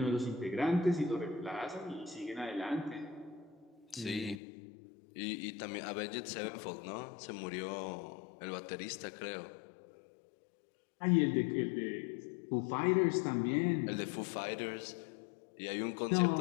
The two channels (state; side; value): drops out; right; at 4.4 s